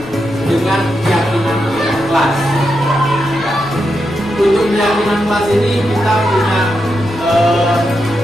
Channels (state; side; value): noise; left; rumble, 20 dB below the sound